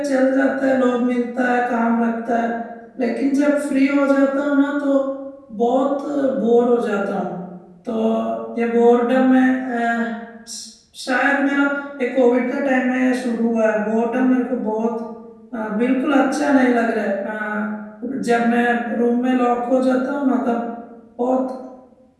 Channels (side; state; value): both; identical; correlation 1.00